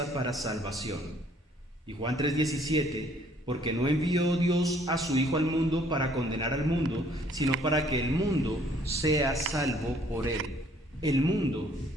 para salvación. Y Juan 3:17: porque no envió Dios a su Hijo al mundo para condenar al mundo, sino para que el mundo sea salvo por él. El mundo,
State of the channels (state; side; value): normal; both; correlation 0.61